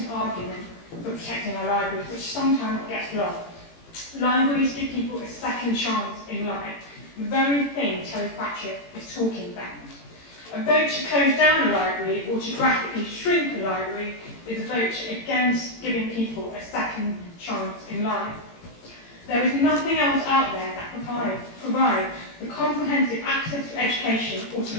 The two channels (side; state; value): right; late; 18 ms